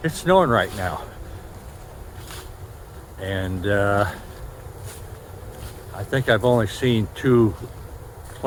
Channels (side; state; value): both; identical; correlation 1.00